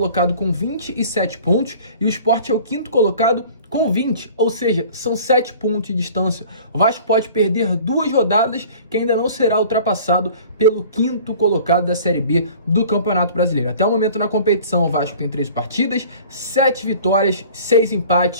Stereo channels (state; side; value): inverted; both; correlation -0.46